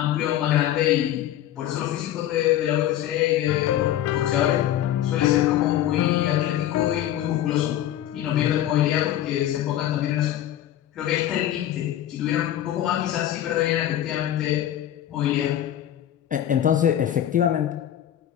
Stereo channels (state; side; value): quieter; right; 12.0 dB